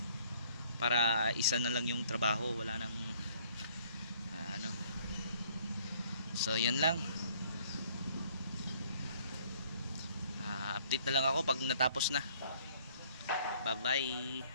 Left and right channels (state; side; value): inverted; both; correlation -0.60